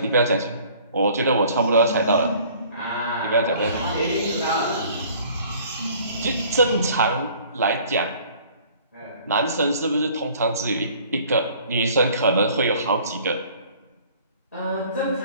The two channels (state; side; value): inverted; both; correlation -0.53